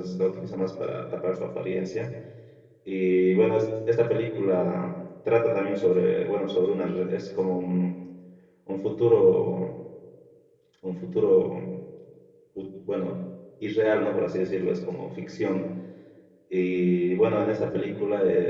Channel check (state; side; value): identical; both; correlation 1.00